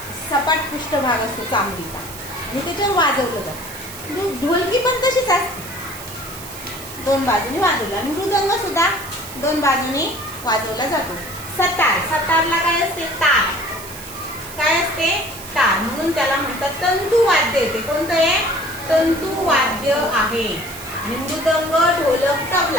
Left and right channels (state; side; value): noise; right; hiss, 13 dB below the sound